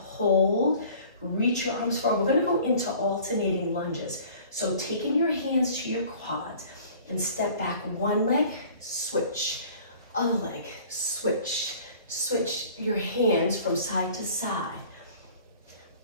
Reach your arms forward. We're gonna go into alternating lunges. So taking your hands to your quads and step back. One leg, switch. Other leg, switch. Switch your hands from side to side.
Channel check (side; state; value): both; inverted; correlation -0.49